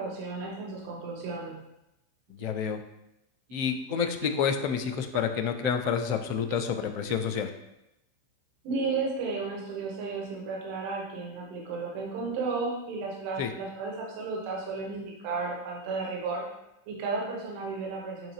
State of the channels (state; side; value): late; left; 15 ms